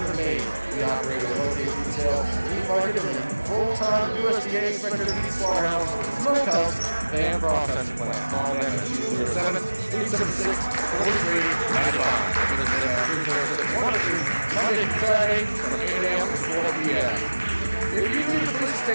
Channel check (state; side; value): inverted; both; correlation -1.00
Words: Maine. We operate a located retail, meat market, and full-time USDA inspected meat slaughterhouse, smokehouse, and processing plant. Call them at 207-876-4395. Visit them at 346 Water Street, Monday through Saturday from 8 a.m. to 4 p.m. If you need a place to